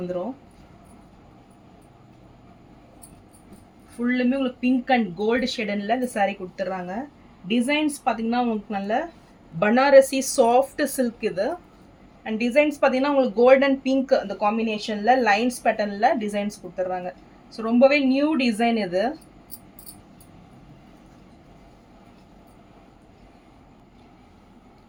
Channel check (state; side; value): identical; both; correlation 1.00